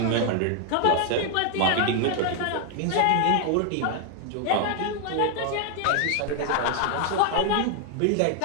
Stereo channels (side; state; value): both; different; correlation 0.01